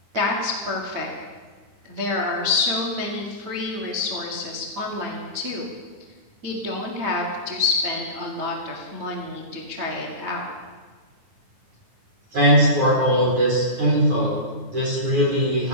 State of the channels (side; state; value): left; late; 9.0 ms